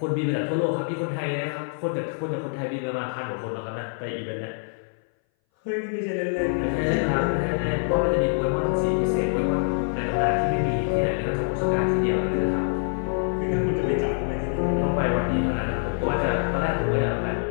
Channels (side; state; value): right; silent; 59 dB below the other